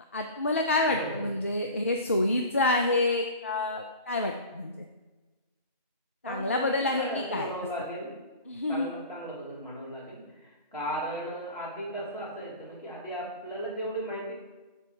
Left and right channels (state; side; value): inverted; both; correlation -0.36